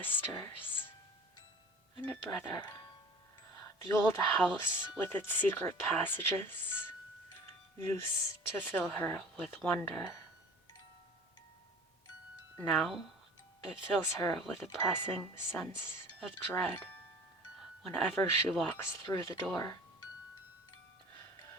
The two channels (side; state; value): both; normal; correlation 0.44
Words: and a brother. The old house with its secret passages used to fill her with wonder. Now it fills her with a pressing sense of dread whenever she walks through the door.